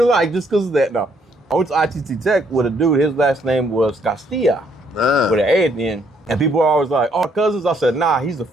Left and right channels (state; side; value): normal; both; correlation 0.69